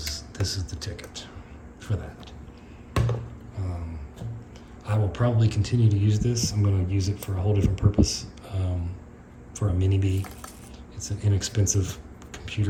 the ticket for that. I will probably continue to use this. I'm going to use it for a whole different purpose, for a mini B. It's an inexpensive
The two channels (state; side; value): identical; both; correlation 1.00